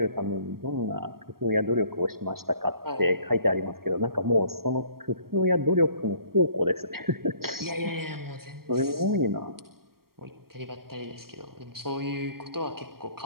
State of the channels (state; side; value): late; left; 0.93 ms